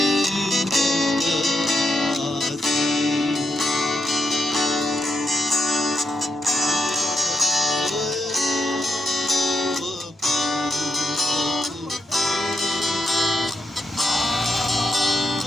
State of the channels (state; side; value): normal; both; correlation 0.84